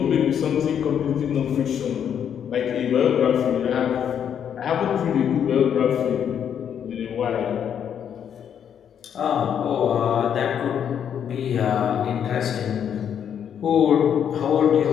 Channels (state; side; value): quieter; right; 8.6 dB